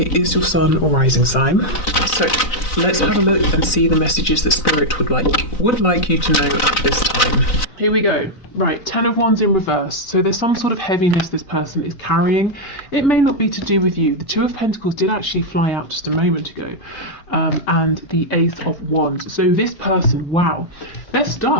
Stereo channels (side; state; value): right; late; 4.0 ms